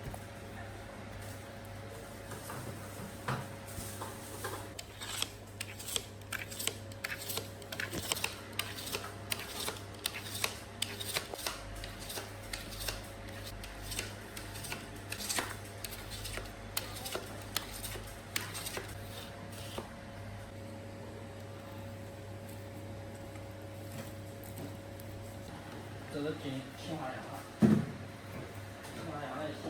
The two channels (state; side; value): identical; both; correlation 1.00